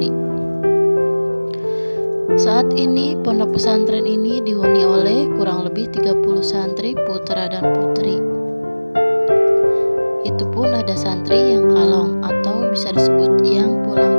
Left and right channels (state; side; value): inverted; both; correlation -1.00